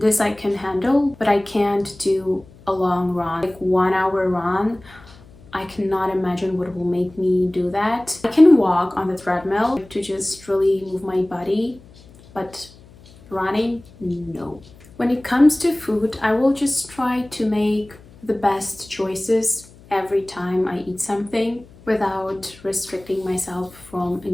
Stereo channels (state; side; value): noise; left; hum, 23 dB below the sound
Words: I can handle, but I can't do a long run, like 1 hour run. I cannot imagine what will make me do that. I can walk on the treadmill to just really move my body, but running, no. When it comes to food, I will just try to make the best choices every time I eat something without restricting myself from